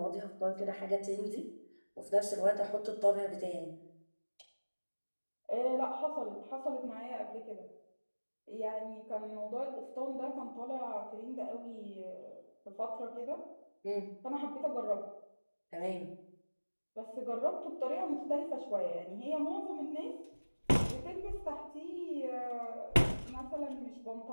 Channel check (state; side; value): inverted; both; correlation -1.00